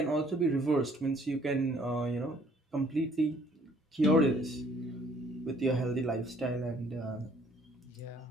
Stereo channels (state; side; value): normal; both; correlation 0.61